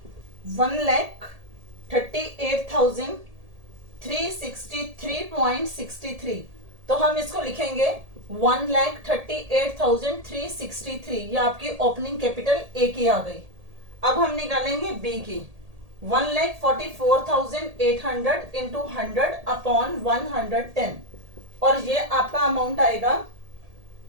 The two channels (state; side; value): late; left; 1.8 ms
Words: 1,38,363.63। तो हम इसको लिखेंगे 1,38,363, ये आपकी ओपनिंग कैपिटल ए की आ गई। अब हम निकालेंगे बी की, 1,44,800 इंटू 100 अपॉन 110, और ये आपका अमाउंट आएगा